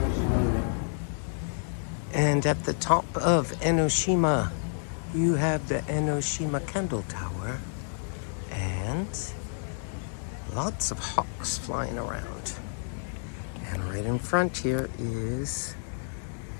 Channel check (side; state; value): right; silent; digital silence